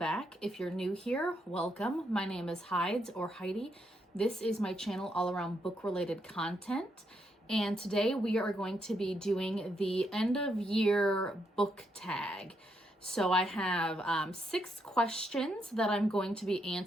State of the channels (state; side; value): normal; both; correlation 0.78